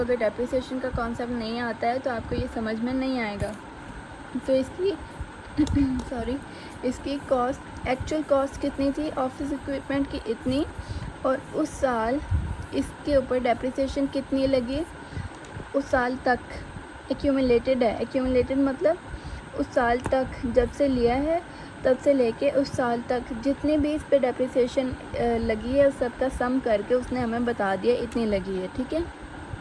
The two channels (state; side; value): identical; both; correlation 1.00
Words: डेप्रिसिएशन का कॉन्सेप्ट नहीं आता है तो आपको ये समझ में नहीं आएगा। तो इसकी सॉरी, इसकी कॉस्ट, एक्चुअल कॉस्ट कितनी थी ऑफिस इक्विपमेंट की, इतनी, और उस साल इसके ऊपर डेप्रिसिएशन कितनी लगी उस साल तक, एक्यूमुलेटेड है। एक्यूमुलेटेड मतलब उस साल तक जब से लिया है तब से लेके उस साल तक जितनी भी इस पे डेप्रिसिएशन लगी है उस सब का सम करके उसने हमें बता दिया इतनी लगी है, ठीक है।